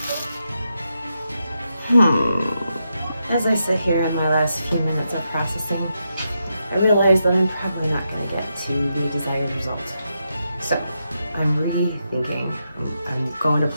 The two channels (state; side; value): inverted; both; correlation -0.84